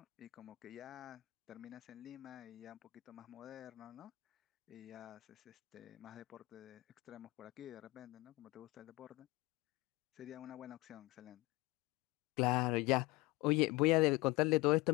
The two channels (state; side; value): quieter; right; 21.6 dB